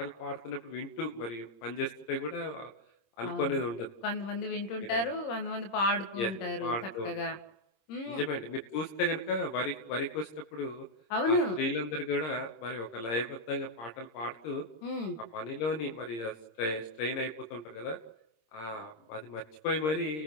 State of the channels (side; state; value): right; late; 26 ms